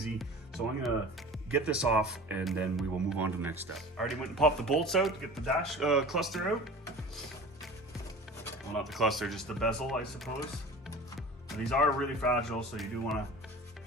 So I'm gonna get this off and then we will move on to the next step. I already went and popped the bolts out to get the dash cluster out. Well, not the cluster, just the bezel, I suppose. And these are really fragile, so you do wanna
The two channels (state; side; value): normal; both; correlation 0.39